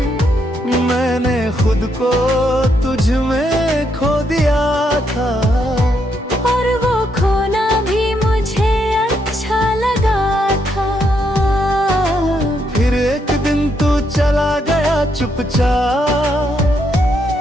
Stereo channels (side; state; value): both; normal; correlation 0.77